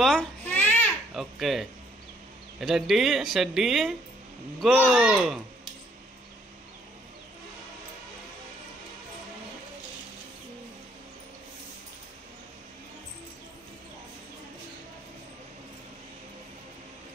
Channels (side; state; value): both; normal; correlation 0.66